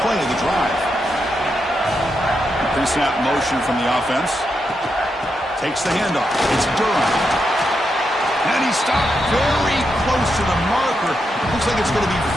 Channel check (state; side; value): normal; both; correlation 0.84